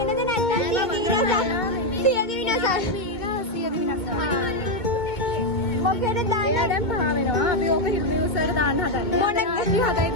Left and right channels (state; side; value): late; right; 2.2 ms